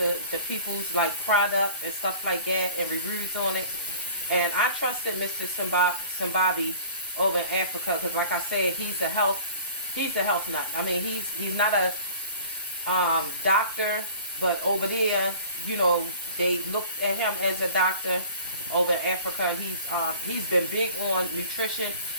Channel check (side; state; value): both; inverted; correlation -0.45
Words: people's like product and stuff like that and reviews on it. And I trusted Mr. Simbabi over in Africa because, like I said, he's a health nut. I mean, he's not a doctor, but over there, you know, they look at him as a doctor over in Africa. He's been big on nutrition.